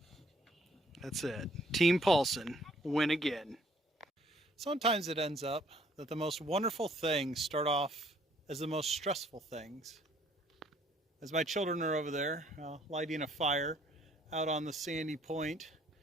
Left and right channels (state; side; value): normal; both; correlation 0.62